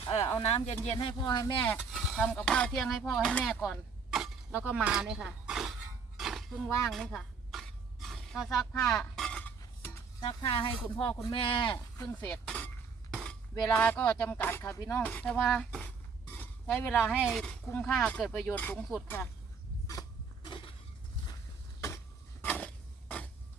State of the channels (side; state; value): left; quieter; 5.3 dB